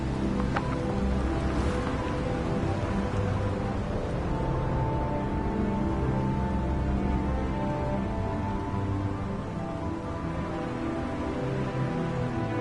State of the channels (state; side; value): identical; both; correlation 1.00